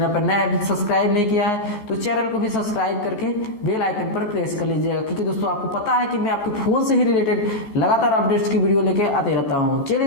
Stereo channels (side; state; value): right; late; 14 ms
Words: पर नया अभी सब्सक्राइब नहीं किया है तो चैनल को भी सब्सक्राइब करके बेल आइकन पर प्रेस कर लीजिएगा, क्योंकि दोस्तों आपको पता है कि मैं आपके फोन से ही रिलेटेड लगातार अपडेट्स की वीडियो लेके आते रहता हूं। चलिए